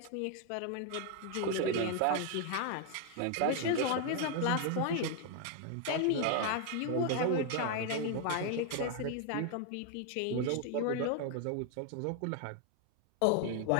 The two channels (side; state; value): both; different; correlation 0.00